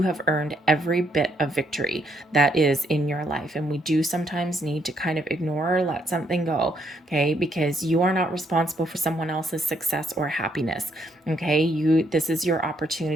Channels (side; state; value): both; normal; correlation 0.73